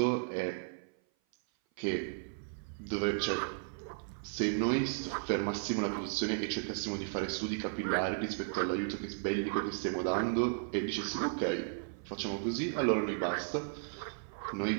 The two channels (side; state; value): left; silent; 55 dB below the other